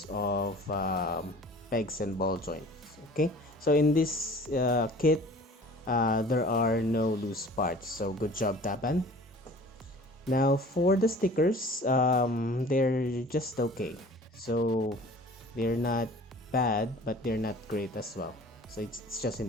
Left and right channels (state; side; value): normal; both; correlation 0.46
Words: of pegs and ball joints. Okay, so in this kit, there are no loose parts, so good job, Daban. Now for the stickers, they're just okay. So they're not bad, but they're not great as well. So it's just